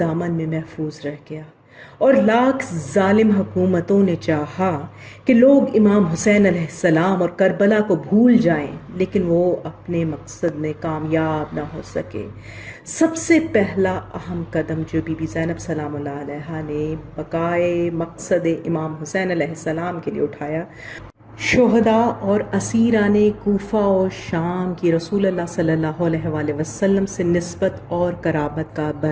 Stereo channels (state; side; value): identical; both; correlation 1.00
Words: میں محفوظ رہ گیا، اور لاکھ ظالم حکومتوں نے چاہا کہ لوگ امام حسین علیہ السلام اور کربلا کو بھول جائیں، لیکن وہ اپنے مقصد میں کامیاب نہ ہو سکے۔ سب سے پہلا اہم قدم جو بی بی زینب سلام اللہ علیہا نے بقائے مقصد امام حسین علیہ السلام کے لیے اٹھایا، شہداء اور اسیران کوفہ و شام کی رسول اللہ صلی اللہ علیہ وآلہ وسلم سے نسبت اور قرابت کا